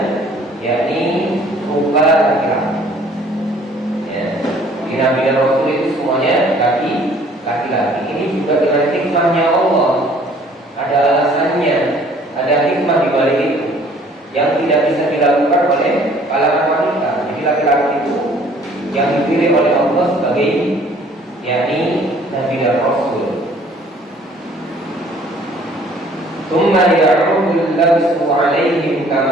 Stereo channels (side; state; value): both; normal; correlation 0.56